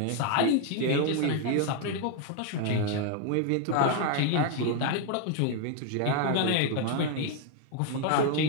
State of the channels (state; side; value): different; both; correlation 0.01